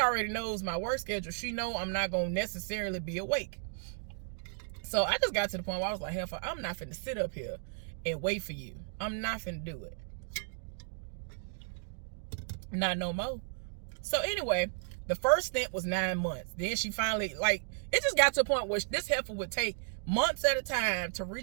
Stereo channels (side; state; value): left; silent; digital silence